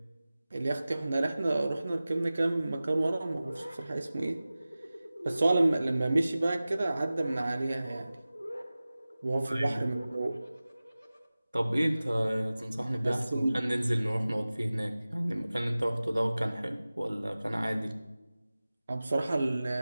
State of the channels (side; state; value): both; inverted; correlation -0.97